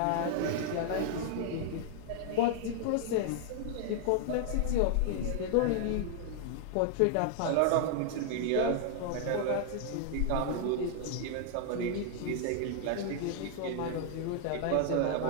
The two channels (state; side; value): different; both; correlation -0.01